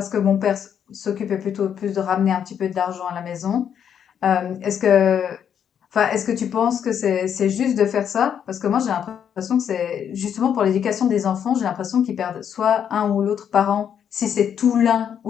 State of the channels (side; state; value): right; quieter; 8.5 dB